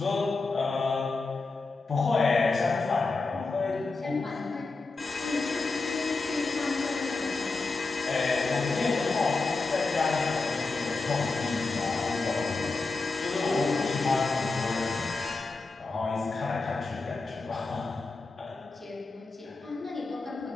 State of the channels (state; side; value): quieter; right; 3.8 dB